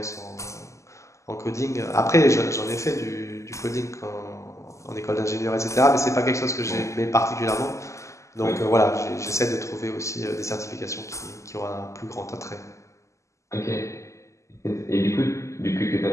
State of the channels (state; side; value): late; right; 0.15 ms